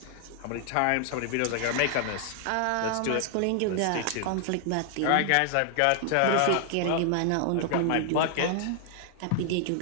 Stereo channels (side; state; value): both; different; correlation 0.00